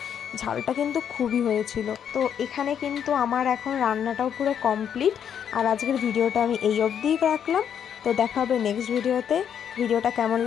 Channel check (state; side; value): quieter; right; 8.6 dB